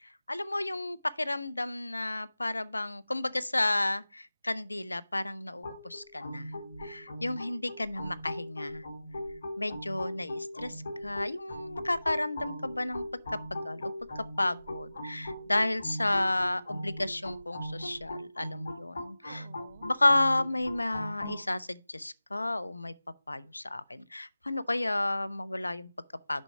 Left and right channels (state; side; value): inverted; both; correlation -0.97